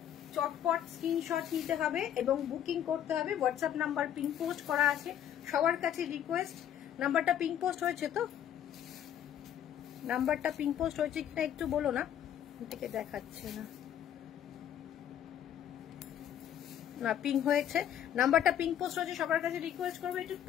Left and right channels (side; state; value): right; quieter; 10.2 dB